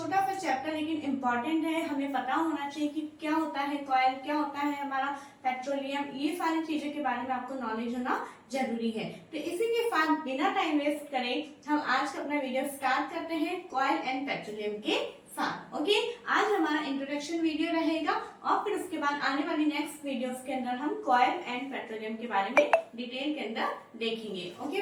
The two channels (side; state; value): both; identical; correlation 1.00